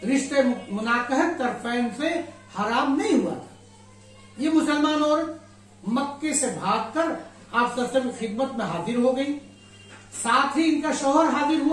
رشتے مناکحت طرفین سے حرام نہیں ہوا تھا. یہ مسلمان عورت مکے سے بھاگ کر آپ صلی اللہ علیہ وسلم کی خدمت میں حاضر ہو گئی، ساتھ ہی ان کا شوہر حاضر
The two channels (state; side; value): identical; both; correlation 1.00